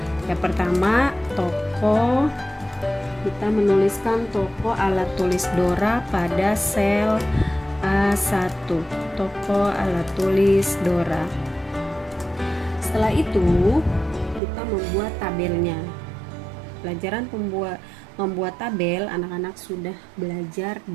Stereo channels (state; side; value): drops out; left; at 14.4 s